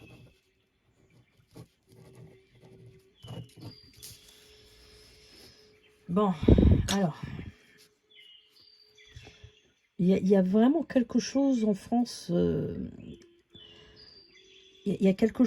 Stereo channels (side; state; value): both; identical; correlation 1.00